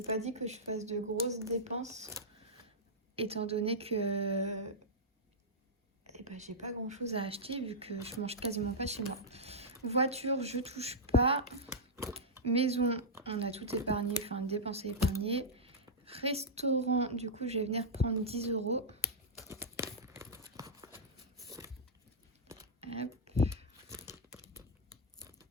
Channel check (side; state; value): both; normal; correlation -0.07